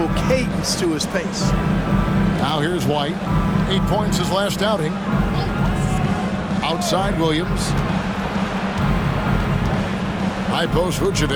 cadence to his pace. Now here's White. 8 points his last outing. Outside Williams. High post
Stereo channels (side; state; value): both; identical; correlation 1.00